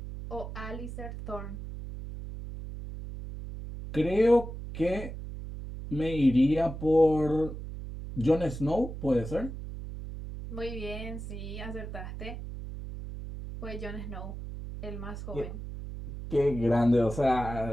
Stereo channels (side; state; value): right; noise; hum, 9 dB below the sound